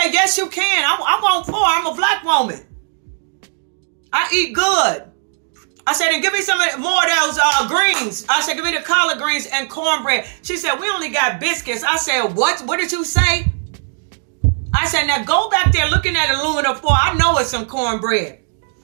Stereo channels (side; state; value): left; silent; 67 dB below the other